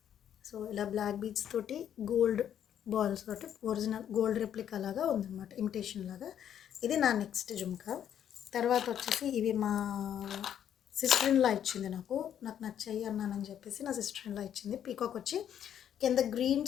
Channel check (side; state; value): right; quieter; 9.7 dB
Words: సో ఇలా బ్లాక్ బీడ్స్ తోటి గోల్డ్ బాల్స్ తోటి ఒరిజినల్ గోల్డ్ రెప్లికా లాగా ఉందన్నమాట, ఇమిటేషన్ లాగా. ఇది నా నెక్స్ట్ జుమ్కా. తర్వాత వచ్చేసి ఇవి మా సిస్టర్ ఇన్లా ఇచ్చింది. నాకు నచ్చాయి అన్నానని చెప్పేసి నా సిస్టర్ ఇన్లా ఇచ్చింది. పీకాక్ వచ్చి కింద గ్రీన్